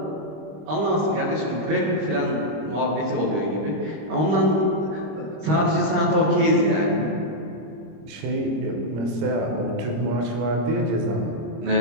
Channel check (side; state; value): left; late; 26 ms